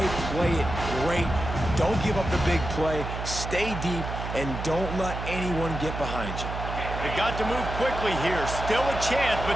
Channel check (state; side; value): noise; right; hum, 6 dB below the sound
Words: play it great. Don't give up the big play. Stay deep, and don't let anyone get behind you. They've got to move quickly here. Still a chance, but